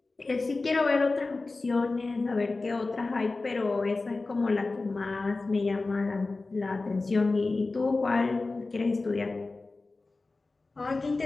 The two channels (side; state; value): right; quieter; 3.5 dB